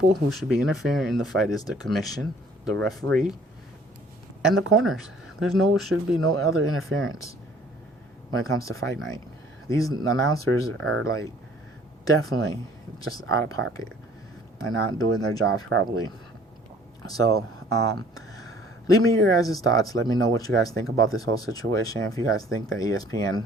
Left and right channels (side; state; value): both; normal; correlation 0.55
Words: who should be interfering in the fight is the commission, the referee, and the corners. Should be no other interference when it comes to fight night. These announcers are like definitely just out of pocket and not doing their jobs properly. So, leave me your guys' thoughts. Let me know what you guys think about this whole situation. If you guys think that